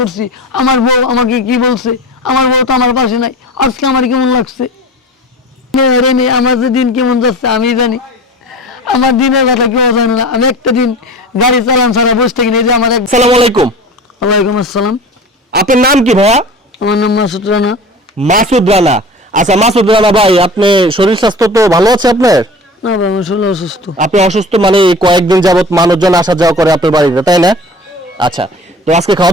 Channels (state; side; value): normal; both; correlation 0.37